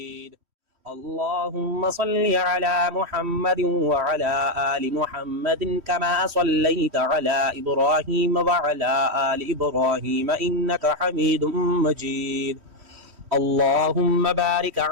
اللهم صل على محمد وعلى آل محمد كما صليت على إبراهيم وعلى آل إبراهيم إنك حميد مجيد. اللهم بارك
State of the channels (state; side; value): late; left; 3.1 ms